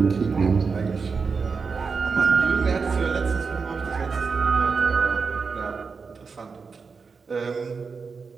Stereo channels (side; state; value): left; quieter; 5.1 dB